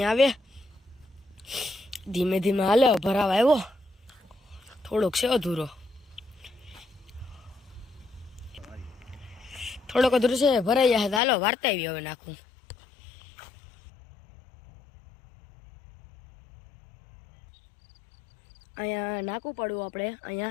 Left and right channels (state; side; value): drops out; right; at 11.2 s